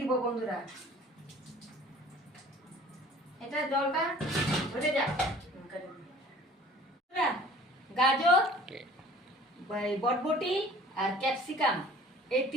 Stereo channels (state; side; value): normal; both; correlation 0.49